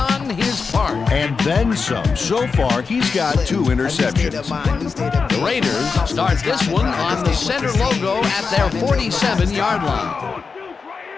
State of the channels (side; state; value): right; quieter; 5.0 dB